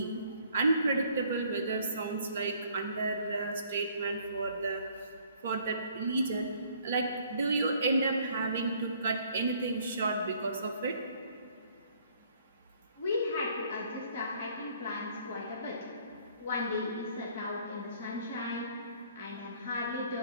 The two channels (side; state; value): both; inverted; correlation -0.61